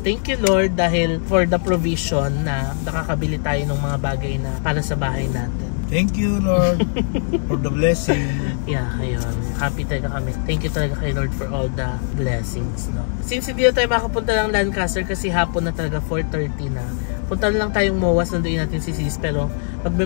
thank you Lord dahil for the provision na nakakabili tayo ng mga bagay na para sa bahay natin. Thank you, Lord, for the blessing. Yeah, ayun. Happy talaga kami. Thank you talaga kay Lord for all the blessings, no? Since hindi na tayo makapunta ng Lancaster kasi hapon na talaga, 4:30 na. Punta na lang tayong MOAS, nandoon natin si Sis, pero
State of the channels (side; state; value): right; silent; 58 dB below the other